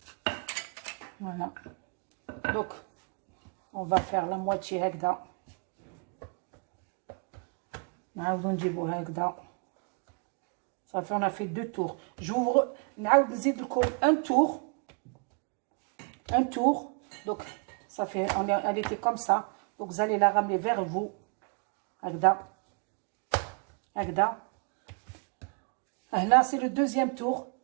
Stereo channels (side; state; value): left; quieter; 38.8 dB